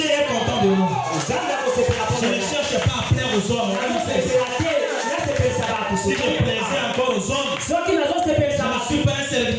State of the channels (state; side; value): identical; both; correlation 1.00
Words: est content de nous. Je ne cherche pas à plaire aux hommes. Si je plaisais encore aux hommes, je ne suis pas un